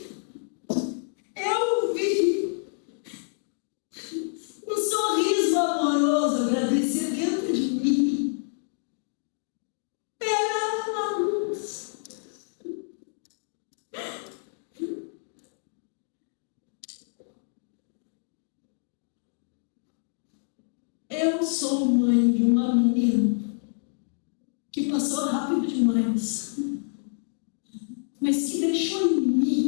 um sorriso amoroso agradecer dentro de mim. Era uma luz. Eu sou mãe de uma menina que passou rápido demais, mas que deixou em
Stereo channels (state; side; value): silent; right; digital silence